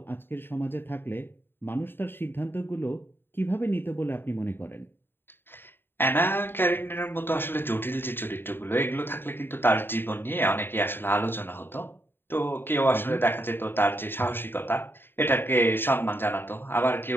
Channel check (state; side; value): late; right; 0.10 ms